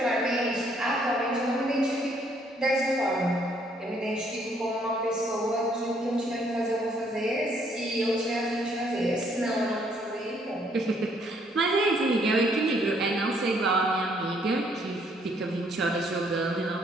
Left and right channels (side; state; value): both; normal; correlation 0.67